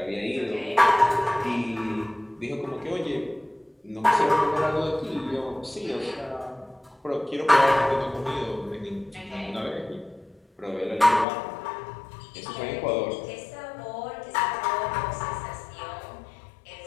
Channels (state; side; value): drops out; right; at 11.2 s